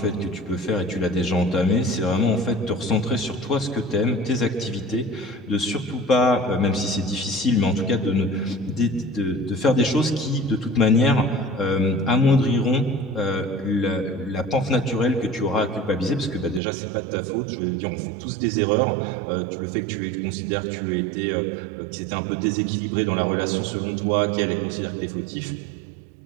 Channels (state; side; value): drops out; left; at 16.6 s